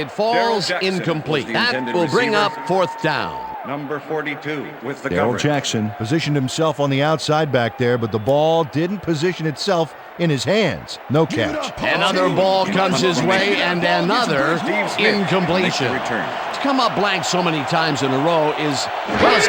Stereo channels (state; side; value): identical; both; correlation 1.00